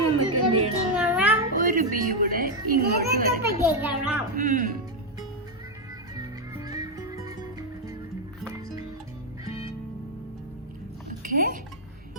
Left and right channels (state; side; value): normal; both; correlation 0.02